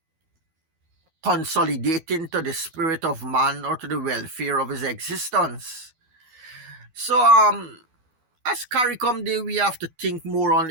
consolidating to the spirit of man or to the welfare of his existence. So as CARICOM Day, we have to think more on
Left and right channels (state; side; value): late; left; 12 ms